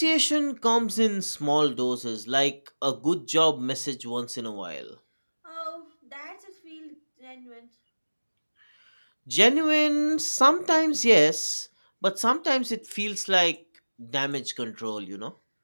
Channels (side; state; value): both; inverted; correlation -1.00